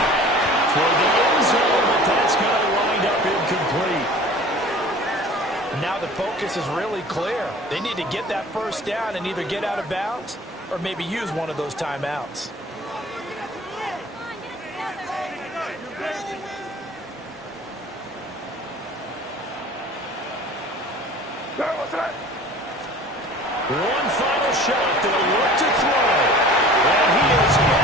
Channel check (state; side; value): normal; both; correlation 0.44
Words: For the end zone, but that's going to wind up incomplete. Now the focus is really clear. They need to get that first down and either get out of bounds or maybe use one of those timeouts. One final shot. They'll look to throw. And he is